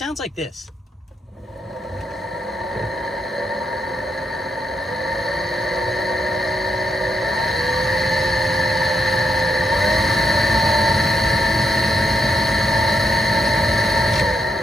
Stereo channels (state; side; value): normal; both; correlation 0.79